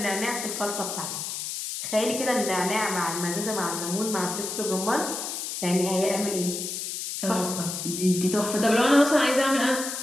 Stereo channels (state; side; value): noise; left; hiss, 5 dB below the sound